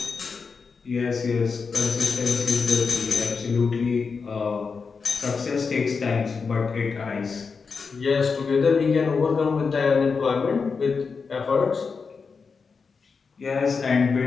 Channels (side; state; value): right; quieter; 5.1 dB